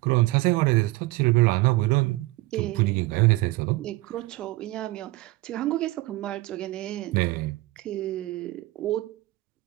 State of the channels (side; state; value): left; quieter; 20.0 dB